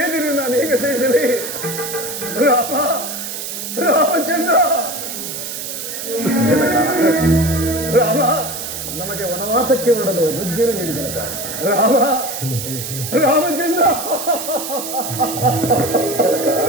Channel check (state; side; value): noise; right; hiss, 6 dB below the sound